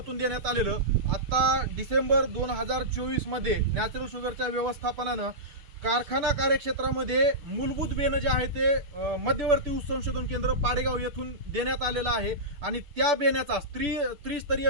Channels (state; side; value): late; left; 6.9 ms